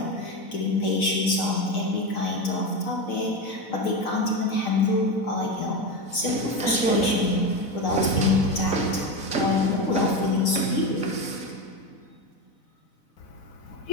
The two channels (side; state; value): right; late; 4.0 ms